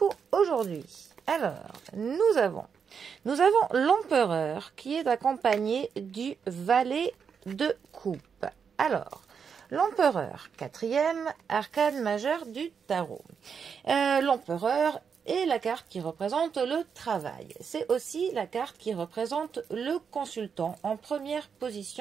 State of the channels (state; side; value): quieter; left; 6.6 dB